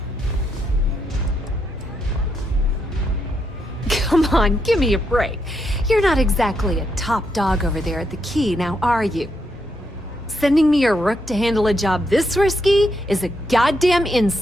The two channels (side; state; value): both; normal; correlation 0.79